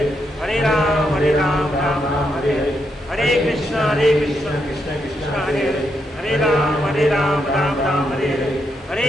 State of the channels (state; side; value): normal; both; correlation 0.80